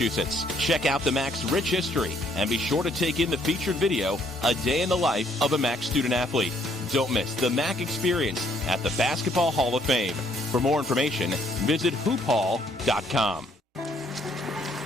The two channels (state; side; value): normal; both; correlation 0.67